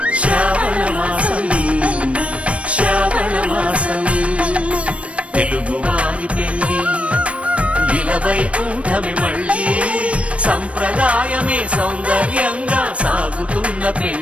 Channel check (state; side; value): late; left; 0.062 ms